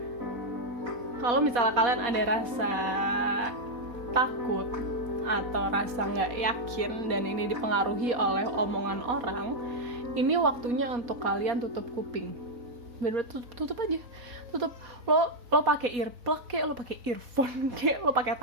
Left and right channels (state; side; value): late; left; 4.2 ms